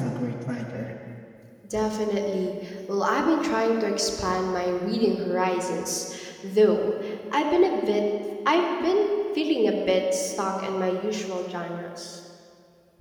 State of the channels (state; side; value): identical; both; correlation 1.00